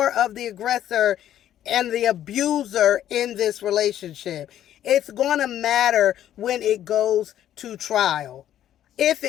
of the aggressor and the abuser in this relationship. It's going to matter when it goes to trial, if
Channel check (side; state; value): right; quieter; 11.5 dB